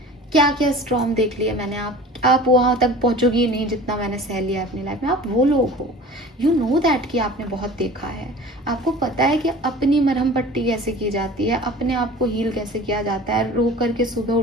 क्या क्या स्ट्रॉम देख लिया मैंने। आप वहाँ तक पहुँचोगी ही नहीं जितना मैंने सह लिया अपनी लाइफ में। आप वो लोग हो, यू नो दैट कि आपने बहुत देखा है, आपको पता है कि अपनी मरहम पट्टी कैसे की जाती है, अपने आप को हील कैसे किया जाता है, रो करके सुबह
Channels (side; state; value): both; normal; correlation 0.41